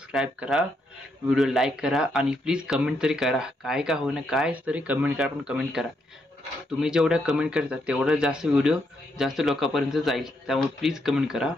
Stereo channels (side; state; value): both; normal; correlation 0.78